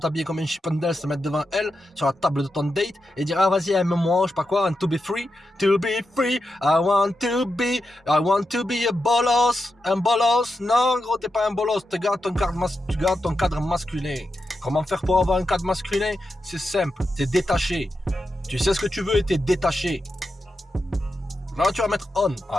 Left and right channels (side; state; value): both; normal; correlation 0.88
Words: comme un chippendale, te mettre devant elle, sur la table de ton date, et dire, ah vas-y, aime-moi, je sais pas quoi, and to be free, I want to be a bolos. Un bolos? Non, gros, t'es pas un bolos, tu gardes ton cadre masculin. Comment faire pour avoir un cadre masculin? C'est simple, t'es détaché. Tu sais ce que tu veux et t'es détaché. Là, tu vas mettre on.